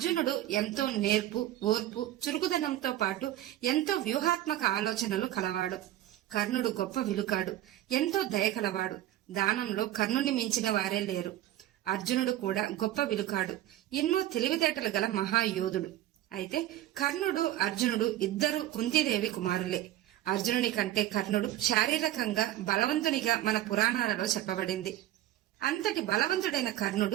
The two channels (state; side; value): quieter; left; 13.6 dB